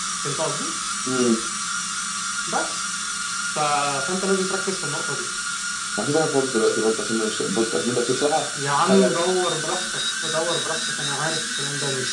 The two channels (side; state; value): both; identical; correlation 1.00